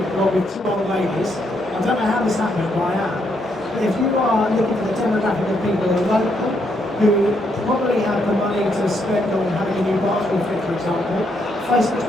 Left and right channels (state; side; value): normal; both; correlation 0.76